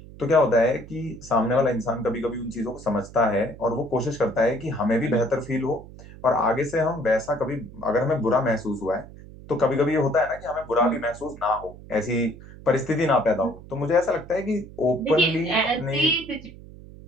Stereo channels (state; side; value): noise; right; hum, 17 dB below the sound